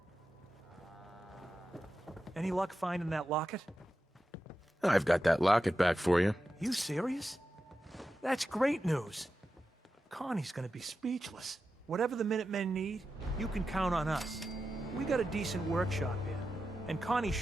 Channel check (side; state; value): both; normal; correlation 0.91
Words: Any luck finding that locket? I've got that locket back for you. You serious? That's great news. Connie's gonna be speechless. Whatever the Minutemen need, you can count on us. We got a decent workshop here, and Connie's